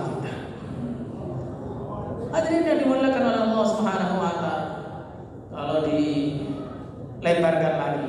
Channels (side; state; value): both; identical; correlation 1.00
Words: kita? Hadirin yang dimuliakan oleh Allah Subhanahu wa taala. Kalau dilebarkan lagi,